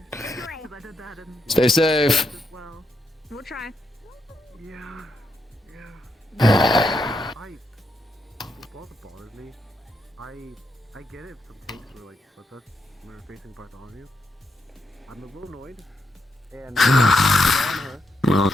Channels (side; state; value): both; normal; correlation 0.81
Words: Because I did that in Stay safe. as well. We'll try. yeah. Yeah. What also bothers me, I get it some takes were like, what's us when we're facing Bartholomew. I'm a little annoyed. And on her, Well,